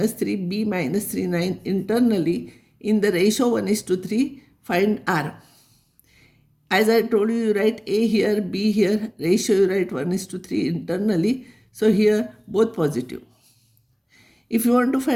3, B minus 3, 9 internally in the ratio 1:3, find R. As I told you, you write A here, B here, ratio you write 1:3 internally. So here both positive. If you want to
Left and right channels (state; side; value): identical; both; correlation 1.00